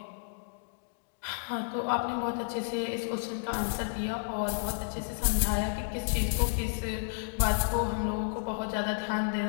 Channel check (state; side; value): silent; right; digital silence